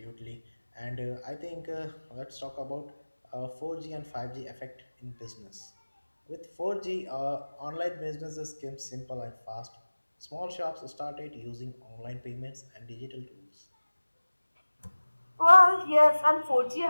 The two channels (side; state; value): both; inverted; correlation -1.00